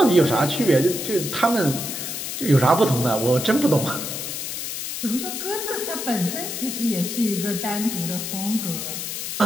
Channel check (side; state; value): left; noise; hiss, 5 dB below the sound